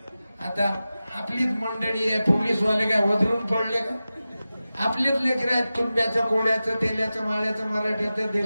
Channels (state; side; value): inverted; both; correlation -0.95